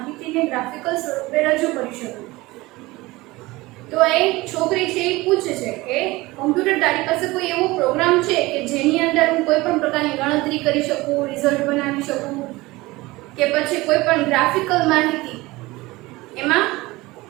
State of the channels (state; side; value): quieter; left; 20.7 dB